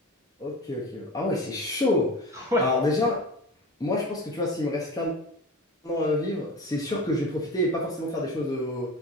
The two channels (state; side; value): normal; both; correlation 0.31